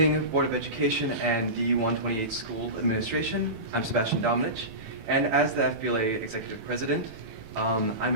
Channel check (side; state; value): left; late; 18 ms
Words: Board of Education and D128 School Administration. I'm Sebastian Dominich, and as the FBLA Executive President, I'm